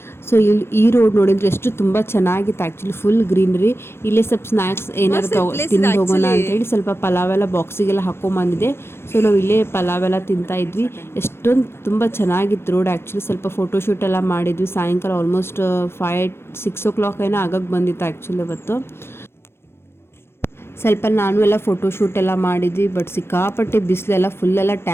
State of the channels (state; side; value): late; right; 0.12 ms